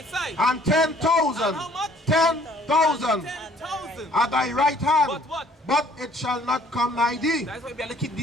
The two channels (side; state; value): both; normal; correlation 0.58